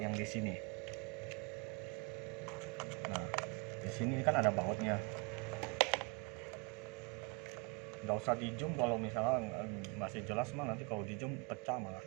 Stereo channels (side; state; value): left; quieter; 32.0 dB